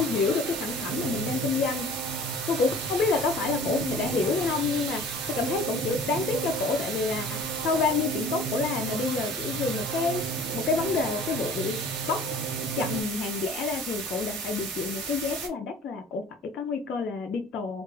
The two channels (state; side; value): normal; both; correlation 0.47